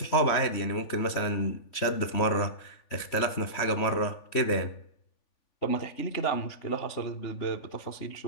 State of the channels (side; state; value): right; late; 3.5 ms